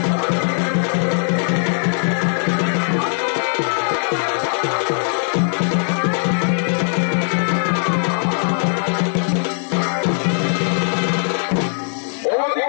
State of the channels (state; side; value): silent; right; digital silence